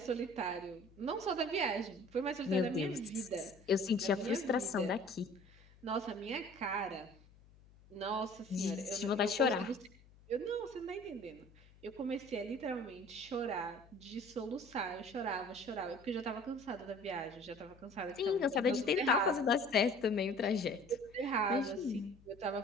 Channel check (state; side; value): noise; left; hum, 25 dB below the sound